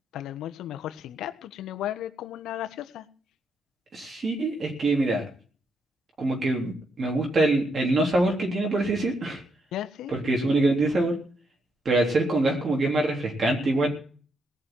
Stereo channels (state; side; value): normal; both; correlation 0.78